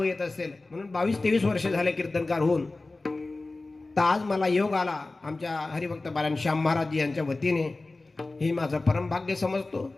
येत असेल म्हणून 22-23 वर्ष झाले कीर्तनकार होऊन, तर आज मला योग आला आमच्या हरिभक्त बाळान श्याम महाराज यांच्या वतीने. हे माझं परम भाग्य समजतो.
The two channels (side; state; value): right; quieter; 3.2 dB